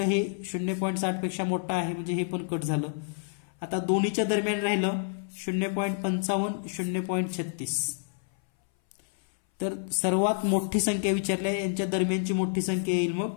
हे 0.60 पेक्षा मोठा आहे म्हणजे हे पण कट झालं. आता दोन्हीच्या दरम्यान राहिलं 0.55 0.36. तर सर्वात मोठी संख्या विचारली आहे यांच्या दरम्यानची मोठी संख्या येईल मग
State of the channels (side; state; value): right; silent; 59 dB below the other